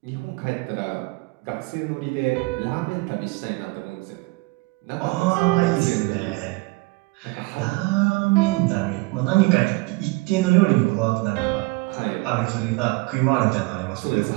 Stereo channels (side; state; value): left; quieter; 24.8 dB